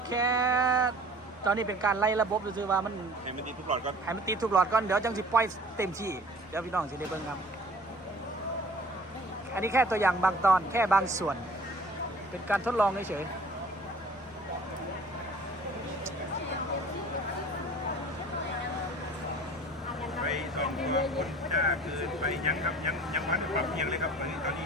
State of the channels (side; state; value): both; normal; correlation 0.48